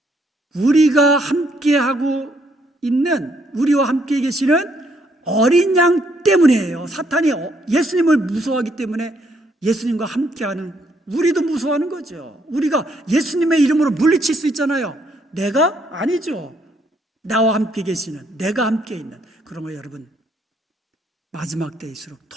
우리가 함께하고 있는, 우리와 함께 계시는 어린 양 때문이에요. 사탄이 예수님을 무서워하기 때문에 예수님과 함께하는 우리도 무서워하는 거죠. 우리가 예수님의 이름으로 물리칠 수 있잖아요. 내가? 아니죠. 나와 함께 계시는, 내가 함께 있는. 그러면 여러분, 마지막 때일수록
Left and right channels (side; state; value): both; normal; correlation 0.71